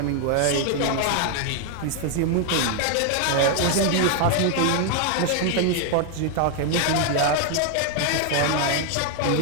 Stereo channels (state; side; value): different; both; correlation 0.00